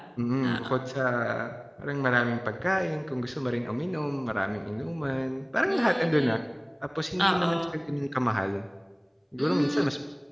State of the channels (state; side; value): identical; both; correlation 1.00